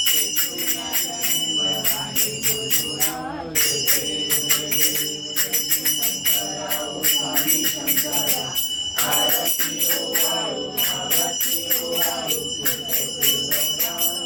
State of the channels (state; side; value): identical; both; correlation 1.00